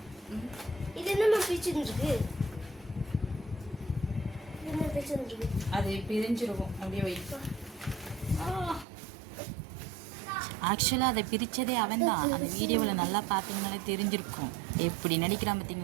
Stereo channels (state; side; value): drops out; left; at 8.8 s